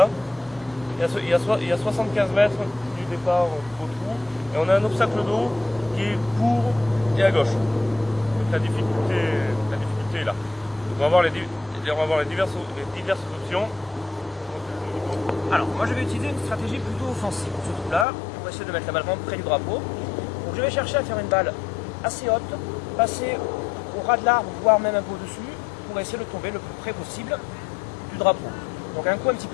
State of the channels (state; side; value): drops out; right; at 18.1 s